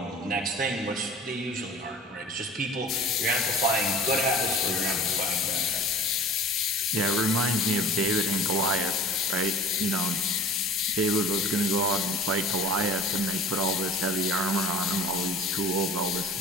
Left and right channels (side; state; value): both; normal; correlation 0.42